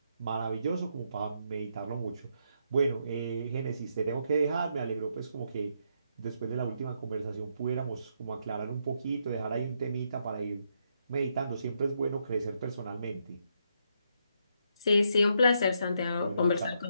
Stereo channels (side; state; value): both; inverted; correlation -0.77